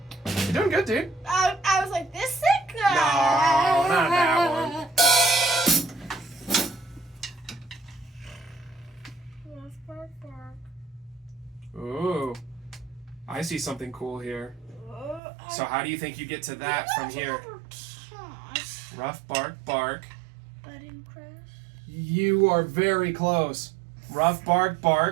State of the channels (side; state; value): left; drops out; at 15.2 s